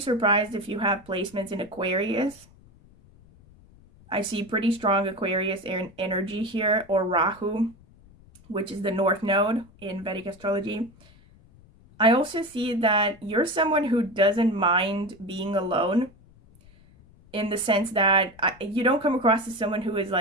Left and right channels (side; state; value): left; noise; rumble, 26 dB below the sound